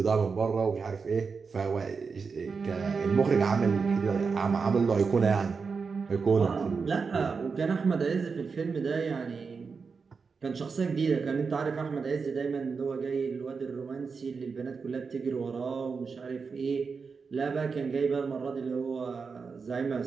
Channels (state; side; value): quieter; left; 5.1 dB